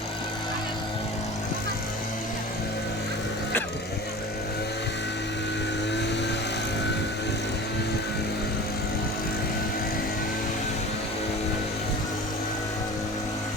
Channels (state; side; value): normal; both; correlation 0.37